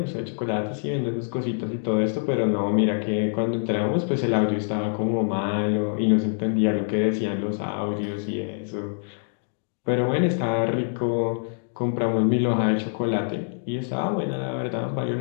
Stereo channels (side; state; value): right; silent; digital silence